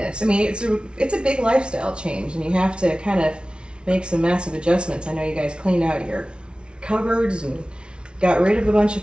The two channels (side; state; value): left; late; 0.057 ms